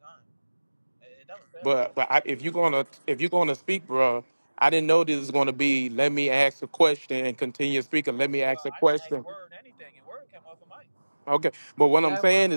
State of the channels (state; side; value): inverted; both; correlation -1.00